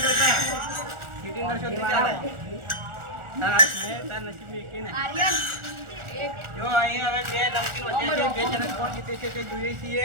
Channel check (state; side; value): late; left; 1.4 ms